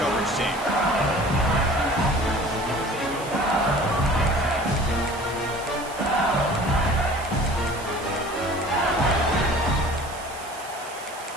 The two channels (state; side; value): noise; right; hiss, 16 dB below the sound